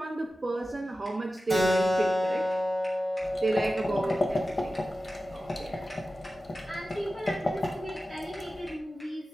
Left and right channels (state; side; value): normal; both; correlation 0.94